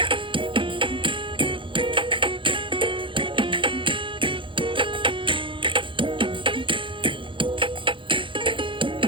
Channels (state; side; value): late; left; 0.25 ms